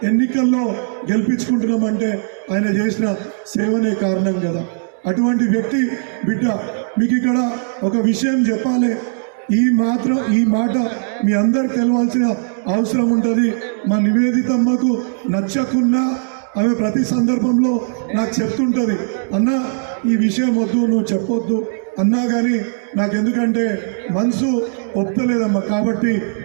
ఎన్నికల్లో గెలిపించుకుంటున్నామంటే ఆయన చేసిన సేవనే కారణం కదా. అటువంటి వ్యక్తి బిడ్డ. మీకు ఇక్కడ ఒక విషయం చెప్పాలి, ఈ మాట మీ అందరికి తెలవాల్సిన అవసరం ఉంటుంది. మా నివేదితమ్మకు నచ్చకున్నా ఆమె ప్రతి సందర్భంలో నాకు చెప్తుంటుంది, అన్న ఈ విషయం వద్దు, నువ్వు చెప్పొద్దు అన్నా కానీ నాకెందుకంటే మనసు ఒప్పుతలేదమ్మా, కాబట్టి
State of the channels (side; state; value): left; silent; digital silence